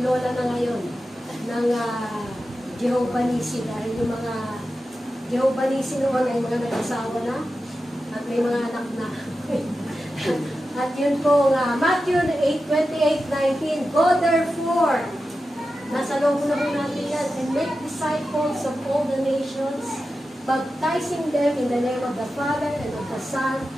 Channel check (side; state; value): both; normal; correlation 0.92